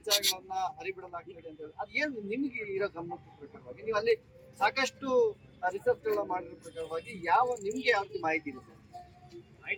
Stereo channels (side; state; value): both; identical; correlation 1.00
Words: ಹರಿಬಿಡಲಾಗ್ತದೆ ಅಂತ ಹೇಳಿ. ಅದ್ ಏನ್ ನಿಮ್ಗೆ ಇರೋ ಗಮನದ ಪ್ರಕಾರವಾಗಿ ನೀವು ಅಲ್ಲಿ ಸಾಕಷ್ಟು ರಿಸರ್ಚ್ ಗಳನ್ನ ಮಾಡಿರೋ ಪ್ರಕಾರವಾಗಿ ನಿಮ್ಗೆ ಯಾವ ಮಾಹಿತಿ ಇದೆ ಸರ್?